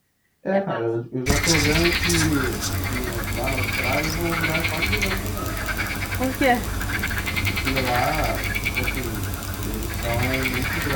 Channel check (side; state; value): both; identical; correlation 1.00